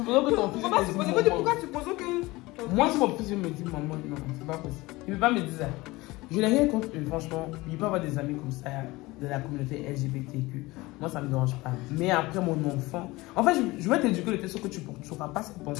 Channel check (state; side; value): quieter; right; 20.9 dB